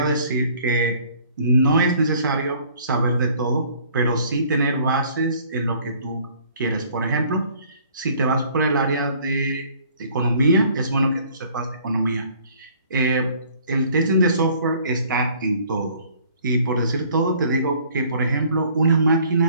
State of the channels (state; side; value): inverted; both; correlation -0.57